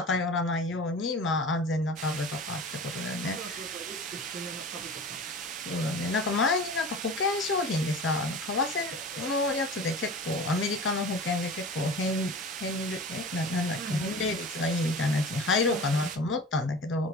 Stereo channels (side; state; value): both; normal; correlation 0.36